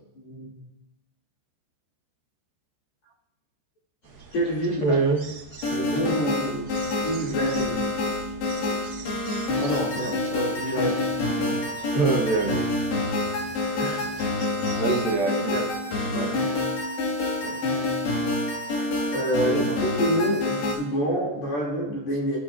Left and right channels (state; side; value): late; right; 14 ms